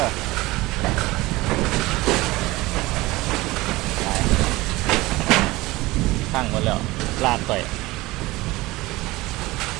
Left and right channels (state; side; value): quieter; left; 20.1 dB